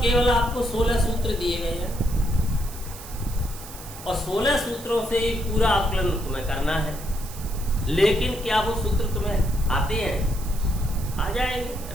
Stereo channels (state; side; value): noise; right; hiss, 15 dB below the sound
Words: केवल आपको 16 सूत्र दिए गए हैं और 16 सूत्रों से पूरा आकलन तुम्हें करना है। लेकिन क्या वो सूत्र तुम्हें आते हैं? आ जाएंगे,